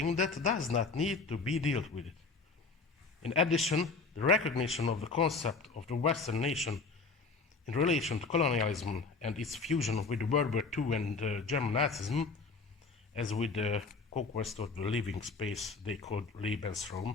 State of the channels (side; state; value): right; quieter; 4.1 dB